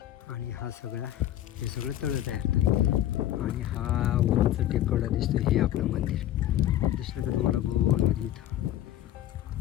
आणि हे सगळं तळं तयार होतं. आणि हा उंच टेकवडा दिसतो, हे आपलं मंदिर दिसलं का तुम्हाला गोलमध्ये इथं.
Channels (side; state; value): right; quieter; 12.7 dB